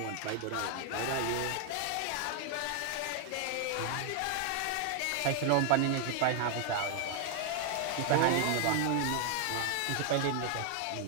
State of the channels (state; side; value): different; both; correlation 0.00